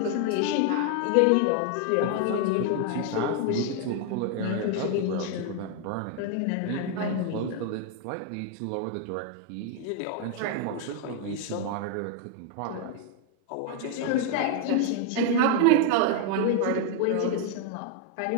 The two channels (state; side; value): different; both; correlation 0.00